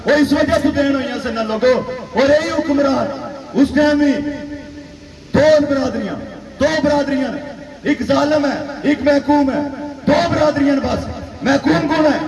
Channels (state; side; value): identical; both; correlation 1.00